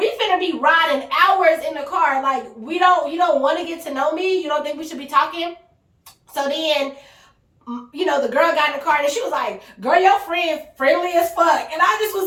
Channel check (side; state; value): both; identical; correlation 1.00